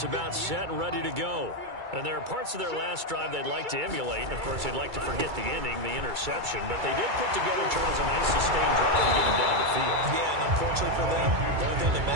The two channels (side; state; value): left; late; 2.3 ms